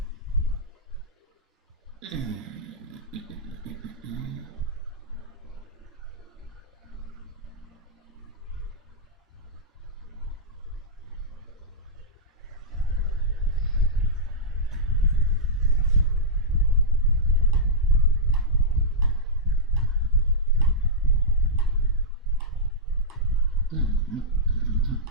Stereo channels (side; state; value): both; normal; correlation -0.11